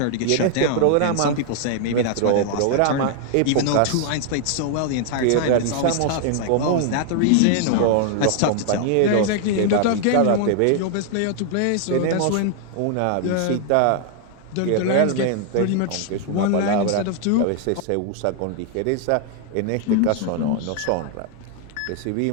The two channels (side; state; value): both; different; correlation 0.00